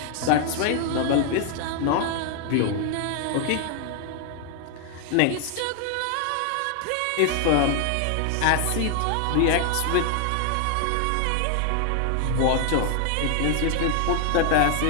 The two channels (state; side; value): different; both; correlation 0.00